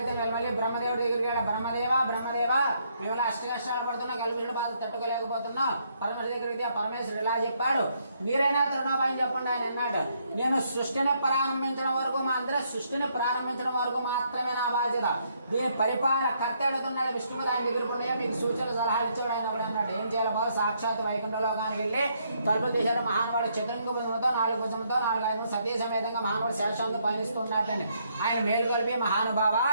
మళ్ళీ బ్రహ్మదేవుడి దగ్గరికి వెళ్ళాడు, బ్రహ్మదేవ మేము అష్ట కష్టాలు పడుతున్నా, కలుపుల బాధ తట్టుకోలేకపోతున్నా, పరమేశ్వరుడి దగ్గరికి పరమేశ్వరుడు ఇలా చెప్పాడు, మీరైనా తరుణోపాయం చెప్పండి ఆయన అన్నాడు. నేను సృష్టిని ప్రారంభించడం వరకు సృష్టిని ప్రారంభించడం వరకు మాత్రమే నా బాధ్యత. దీని పరిపాలన కర్త అడుగుతున్నాడు విష్ణువు, ఆయన ఎదుర్కొన్నాయో మీకు సూచన సలహాలు ఇచ్చాడు ఆయన కూడా అన్నాడు. ఏం చేయాలి బాబు, సాక్షాత్ వైకుంఠ లోకానికి వెళ్ళి తలుపులు తీశాడు. మహానుభావుడు చతురంగ భుజంతో 4 భుజంతో 4 ఐదు సతీ సమేతంగా మహానుభావుడు శేషంతో పయనిస్తున్నాడని ఆయన మేలు కలిపి మహానుభావ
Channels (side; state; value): both; inverted; correlation -0.72